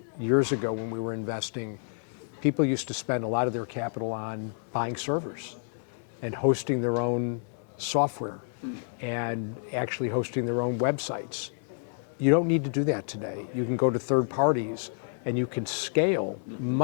years ago when we were investing, people used to spend a lot of their capital on buying servers and hosting their own software and actually hosting their own websites. You don't need to do that today. You can go to third parties and you can scale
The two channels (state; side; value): silent; right; digital silence